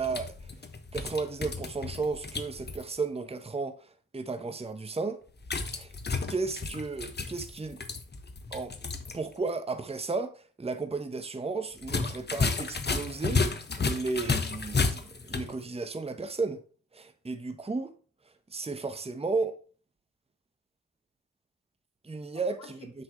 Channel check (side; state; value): both; normal; correlation 0.60